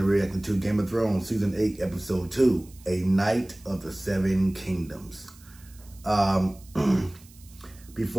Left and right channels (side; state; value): right; noise; hiss, 25 dB below the sound